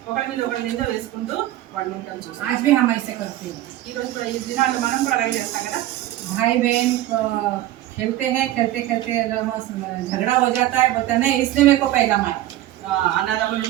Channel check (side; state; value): left; quieter; 14.5 dB